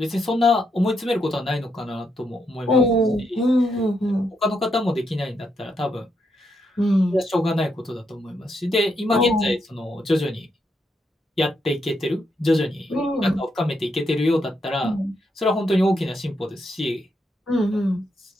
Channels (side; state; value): both; normal; correlation 0.80